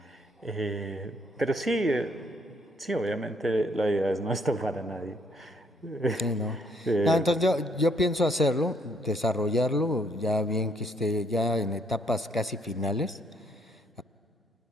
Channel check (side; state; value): both; normal; correlation 0.68